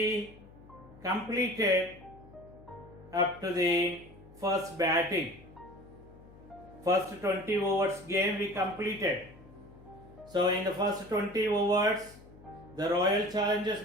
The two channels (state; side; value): noise; left; hum, 21 dB below the sound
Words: completed up to the first batting. First 20 overs game we completed. So in the first 20 overs, the Royal Challengers